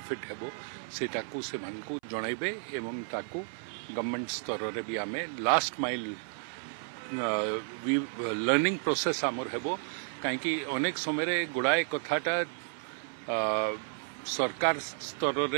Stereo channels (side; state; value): left; silent; 56 dB below the other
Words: हेबो सेटा को से मान को जणाइबे एवं ताको गवर्नमेंट स्तर रे भी आमे लास्ट माइल लर्निंग प्रोसेस आमर हेबो काहेकि अनेक समय रे गुड़ाए कथाटा सरकार स्तर